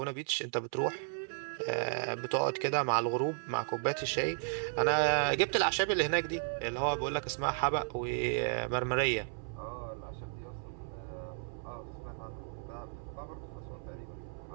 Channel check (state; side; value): silent; left; 55 dB below the other